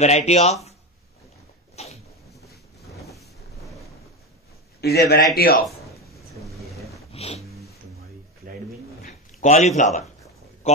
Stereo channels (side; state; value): both; normal; correlation 0.17